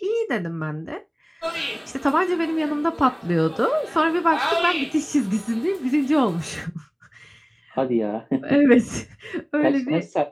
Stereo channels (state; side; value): identical; both; correlation 1.00